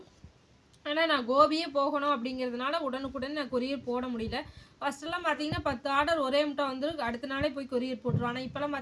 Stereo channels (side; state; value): both; identical; correlation 1.00